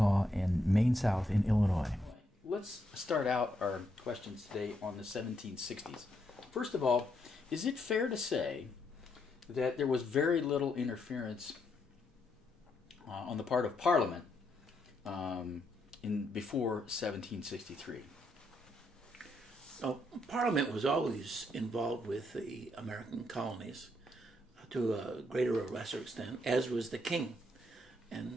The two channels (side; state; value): both; normal; correlation 0.77